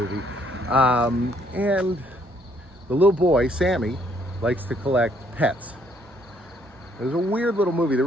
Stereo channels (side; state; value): both; normal; correlation 0.67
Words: And the little boy, Sammy, likes to collect pets. It was a weird little movie. The